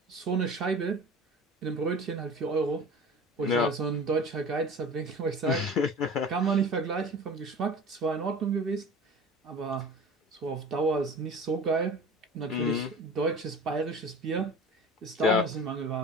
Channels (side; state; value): both; normal; correlation 0.38